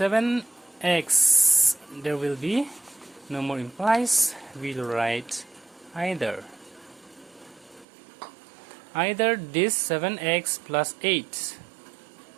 there will be no more implies. We'll write either this 7x plus 8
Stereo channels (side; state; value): left; drops out; at 7.9 s